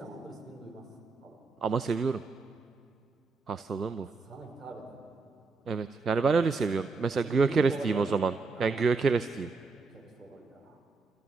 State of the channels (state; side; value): quieter; left; 4.2 dB